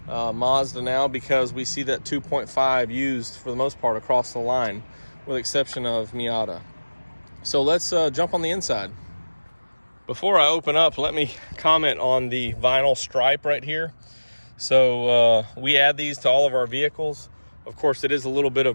Mazda now, because we see that 2.5 used for the most part across the line, with the exception of Miata. So let's jump on the inside. Before I open up, let me comment on the vinyl stripe right here. So we add these to all of our vehicles. Of course, it is a little bit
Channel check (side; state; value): both; inverted; correlation -1.00